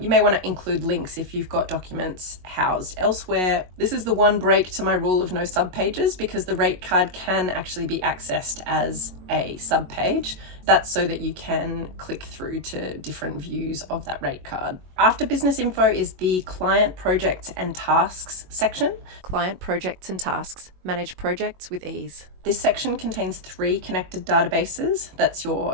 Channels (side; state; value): left; late; 22 ms